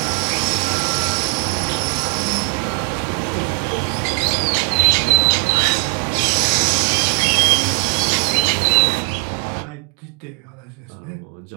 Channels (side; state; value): left; quieter; 34.4 dB